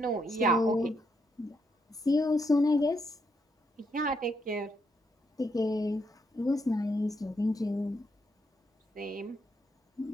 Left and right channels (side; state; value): both; normal; correlation 0.78